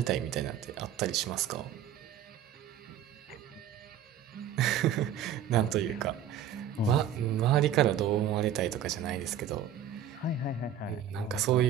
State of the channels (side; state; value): left; quieter; 9.3 dB